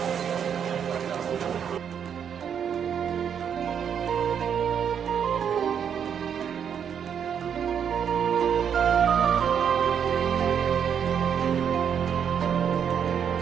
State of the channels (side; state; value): left; quieter; 8.0 dB